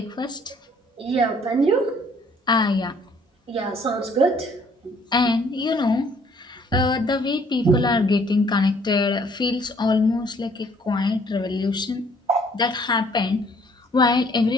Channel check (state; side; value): normal; both; correlation 0.61